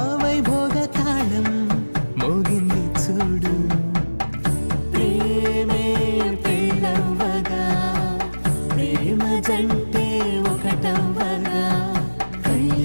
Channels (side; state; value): both; inverted; correlation -1.00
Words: వైభోగ తాళం మోగింది చూడు ప్రేమే పెళ్ళవ్వగా ప్రేమ జంటే ఒకటవ్వగా